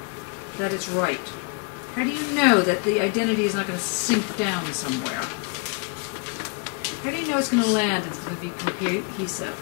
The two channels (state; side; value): quieter; right; 31.2 dB